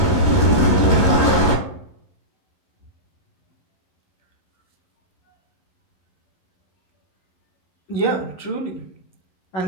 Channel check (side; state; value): right; late; 11 ms